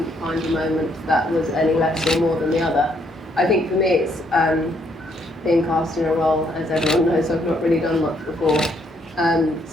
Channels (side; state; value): both; normal; correlation 0.71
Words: find a moment that was any less or more than the other. I think for me it's being cast in a role, as everyone knows, I've not really done much before.